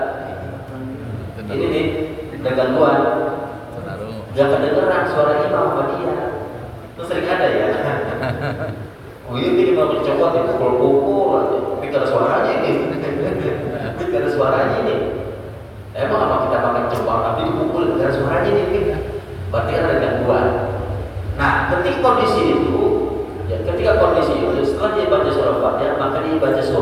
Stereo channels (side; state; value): both; identical; correlation 1.00